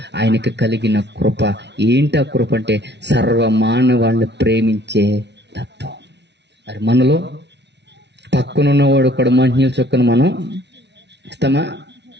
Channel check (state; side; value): late; left; 0.50 ms